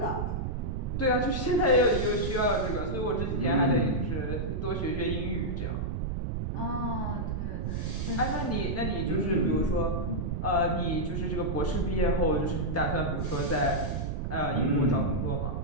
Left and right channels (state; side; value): noise; right; rumble, 2 dB below the sound